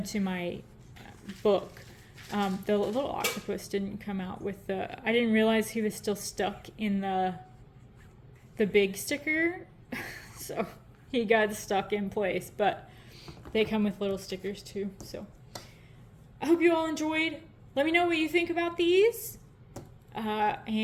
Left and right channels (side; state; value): both; identical; correlation 1.00